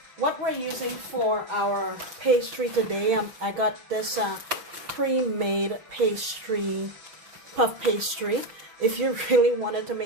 what we're using for our pastry today, I got this pre-made pastry, puff pastry. If you really wanted to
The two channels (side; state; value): left; late; 6.3 ms